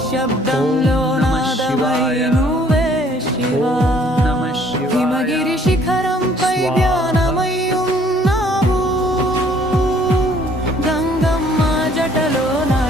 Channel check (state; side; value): normal; both; correlation 0.60